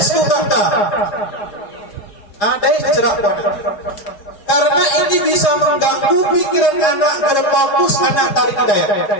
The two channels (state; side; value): late; right; 4.9 ms